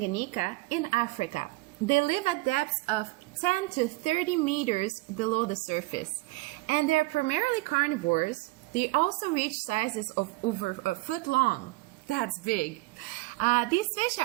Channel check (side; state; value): left; quieter; 22.0 dB